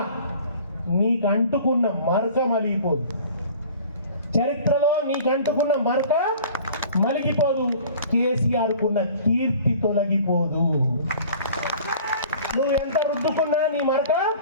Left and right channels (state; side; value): inverted; both; correlation -0.46